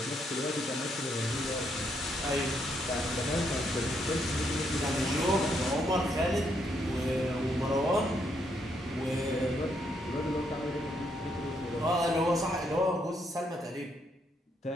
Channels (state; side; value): normal; both; correlation 0.75